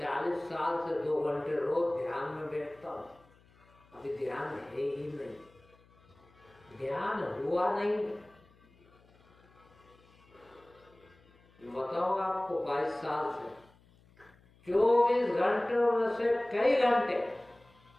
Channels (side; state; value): left; noise; hum, 29 dB below the sound